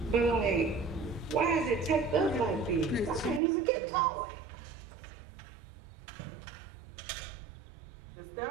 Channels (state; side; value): drops out; left; at 3.4 s